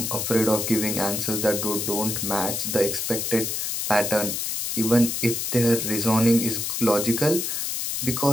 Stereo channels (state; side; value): noise; left; hiss, 1 dB below the sound